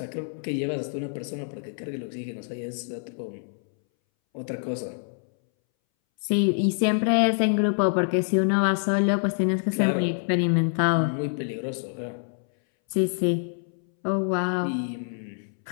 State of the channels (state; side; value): silent; right; 61 dB below the other